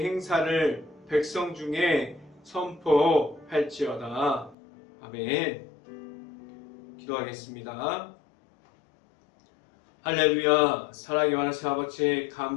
행사를 백성 중에 선포할지어다. 아멘. 기도하겠습니다. 할렐루야. 사랑의 하나님 아버지,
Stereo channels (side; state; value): right; drops out; at 4.5 s